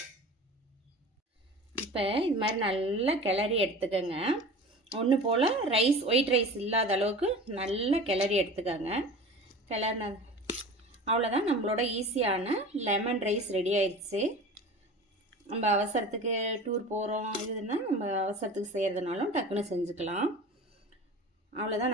இப்போ இது மாதிரி நல்லா கிளறி எடுத்துக்கோங்க. ஒன்று போல் ஒயிட் ரைஸ் இல்லாத அளவுக்கு நல்லா கிளறி எடுத்துக்கோங்க. கிளறின அவ்வளோதான், நம்மளோட ஈஸியான லெமன் ரைஸ் ரெடி ஆயிடுச்சு. நம்ம அவசரத்துக்கு டூர் போகிறோம் இதுன்னா நம்ம அவசரத்துக்கு செய்கிறதுனாலும் டக்குன்னு செஞ்சுக்கலாம். அவ்வளோதான்,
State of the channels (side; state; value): both; normal; correlation 0.36